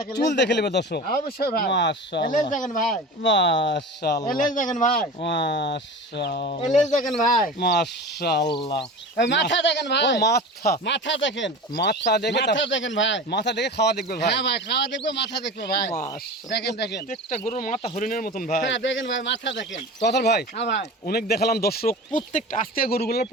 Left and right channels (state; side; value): normal; both; correlation 0.33